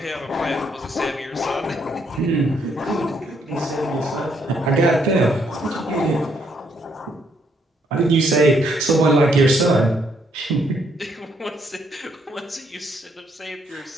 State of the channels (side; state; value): both; normal; correlation 0.72